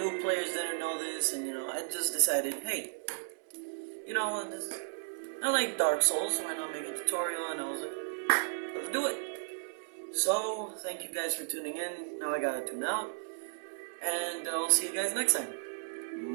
players didn't know this, and I just decided, hey, I like Dark Souls. Why not make a tutorial? And I was like, let's do it. So thank you guys for tuning in. Now I gotta tune out, and I'll see you guys next time.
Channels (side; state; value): left; silent; 55 dB below the other